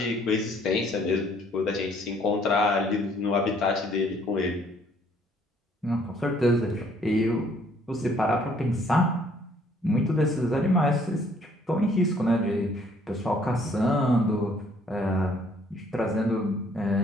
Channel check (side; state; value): both; normal; correlation 0.62